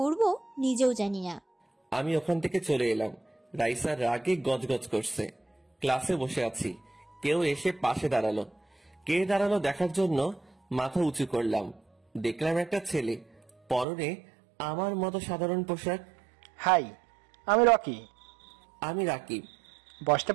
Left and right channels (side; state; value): left; drops out; at 13.9 s